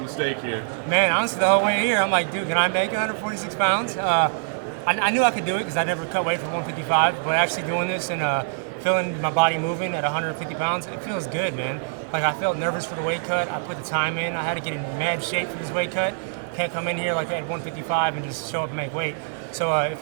here? Man, honestly, the whole way here, I'm like, dude, can I make 146 pounds? I knew I could do it because I never cut weight from 155, but actually doing this and feeling my body moving at 150 pounds, it feels good, man. Like, I felt nervous for the weight cut. I put the time in. I had to get in mad shape for this weight cut. Can't come in here like at 155 and just show up and make weight. So it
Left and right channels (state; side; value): silent; left; digital silence